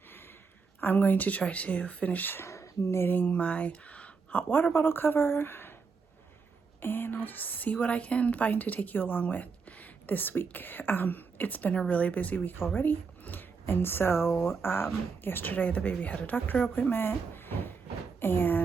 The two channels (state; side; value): quieter; left; 5.2 dB